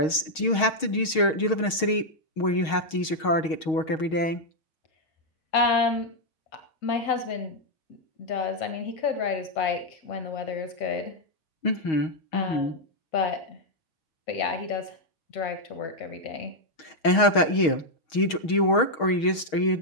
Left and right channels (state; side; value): late; right; 6.3 ms